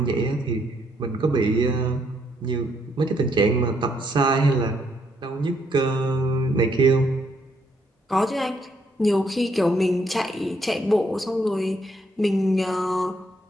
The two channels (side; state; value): both; normal; correlation 0.72